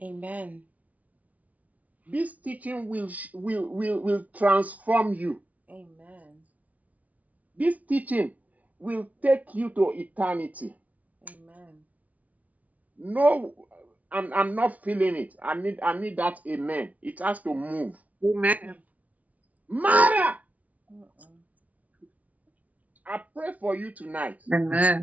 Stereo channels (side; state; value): left; late; 0.071 ms